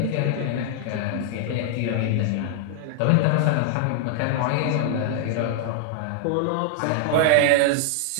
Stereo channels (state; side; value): different; both; correlation 0.00